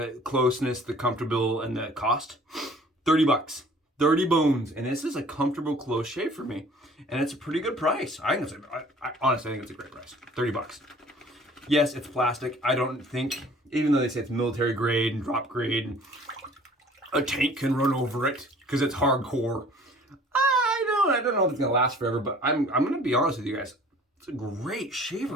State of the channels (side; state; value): both; normal; correlation 0.51